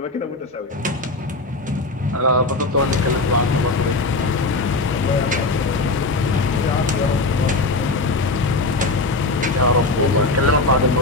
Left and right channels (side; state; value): right; quieter; 3.2 dB